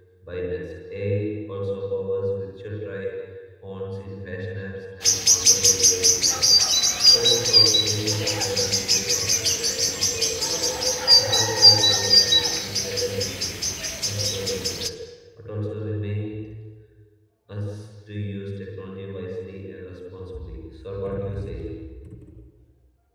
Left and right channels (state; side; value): identical; both; correlation 1.00